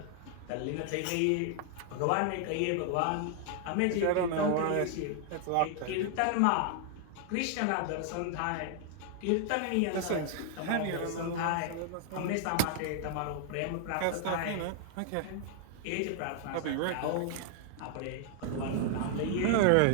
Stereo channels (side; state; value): both; different; correlation 0.00